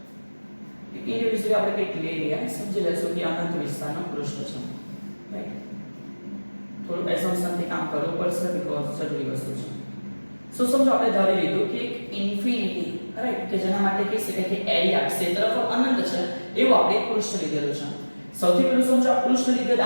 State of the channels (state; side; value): inverted; both; correlation -1.00